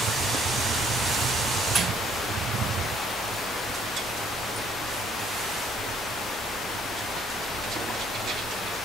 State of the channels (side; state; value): both; normal; correlation 0.64